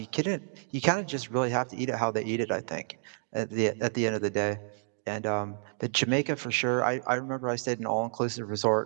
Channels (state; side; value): silent; left; digital silence